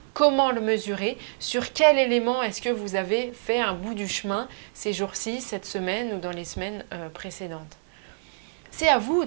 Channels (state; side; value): silent; left; digital silence